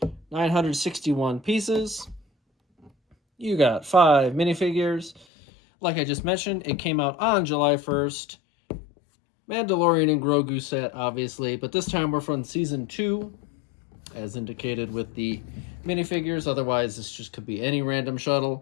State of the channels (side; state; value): right; drops out; at 5.2 s